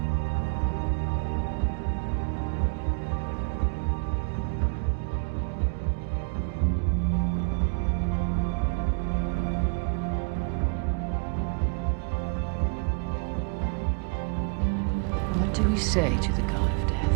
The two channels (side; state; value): left; quieter; 34.3 dB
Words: What do we say to the god of